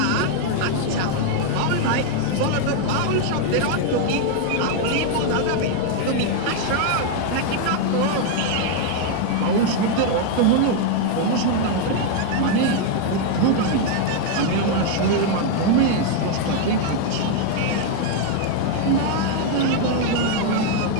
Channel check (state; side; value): different; both; correlation 0.01